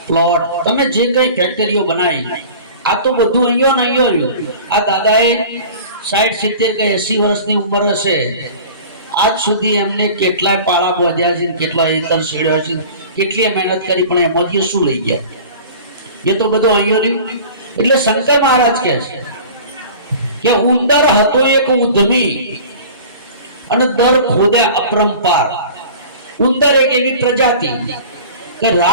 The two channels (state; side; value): inverted; both; correlation -0.41